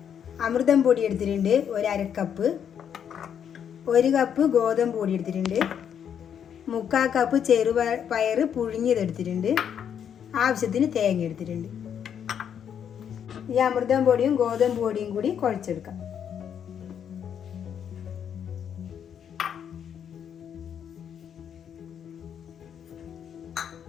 അമൃതം പൊടി എടുത്തിട്ടുണ്ട് 1/2 കപ്പ്, 1 കപ്പ് ഗോതമ്പ് പൊടി എടുത്തിട്ടുണ്ട്, 3/4 കപ്പ് ചെറുപയർ പുഴുങ്ങിയതെടുത്തിട്ടുണ്ട്, ആവശ്യത്തിന് തേങ്ങ എടുത്തിട്ടുണ്ട്. ഈ അമൃതം പൊടിയും ഗോതമ്പ് പൊടിയും കൂടി കുഴച്ചെടുക്കാം.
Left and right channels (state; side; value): quieter; right; 8.5 dB